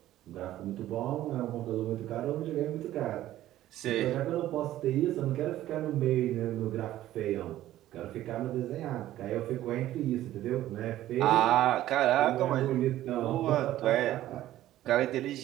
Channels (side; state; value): left; quieter; 13.9 dB